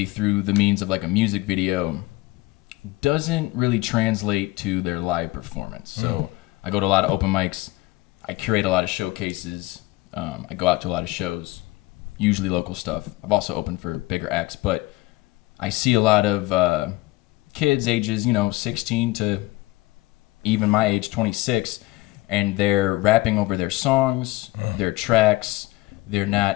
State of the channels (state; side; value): quieter; right; 20.1 dB